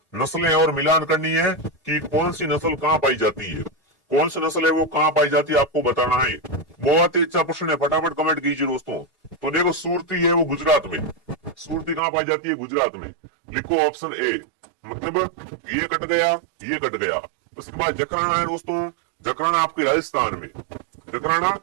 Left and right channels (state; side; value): drops out; left; at 12.0 s